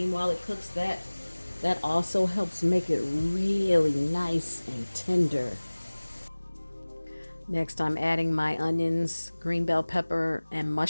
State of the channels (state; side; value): inverted; both; correlation -1.00